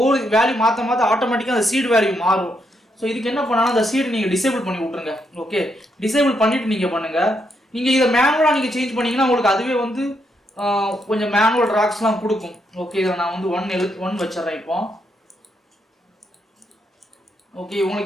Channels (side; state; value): both; normal; correlation 0.78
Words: வேல்யூ மாற்ற ஆட்டோமேட்டிக்காக அந்த சீடு வேல்யூ மாறும். ஸோ இதுக்கு என்ன பண்ணாலும் அந்த சீடு நீங்கள் டிசேபிள் பண்ணி விட்ருங்க. ஓகே, டிசேபிள் பண்ணிவிட்டு நீங்கள் பண்ணுங்கள். நீங்கள் இதை மேனுவலாக நீங்கள் சேஞ்ச் பண்ணிங்கன்னா உங்களுக்கு அதுவே வந்து கொஞ்சம் மேனுவல் ராக்ஸ்லாம் கொடுக்கும். ஓகே, இதில் நான் வந்து 1 வச்சிட்றேன் இப்போ. ஓகே,